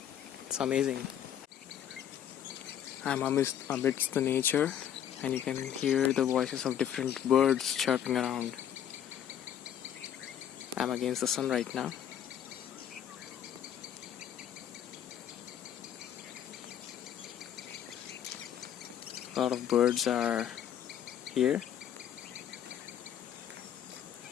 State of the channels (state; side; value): quieter; right; 9.9 dB